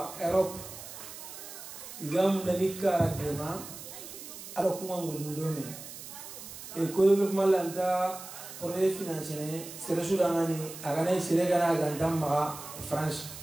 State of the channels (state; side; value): noise; right; hiss, 12 dB below the sound